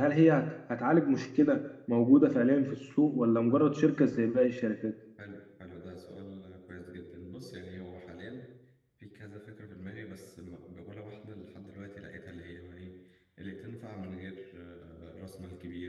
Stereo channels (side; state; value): both; identical; correlation 1.00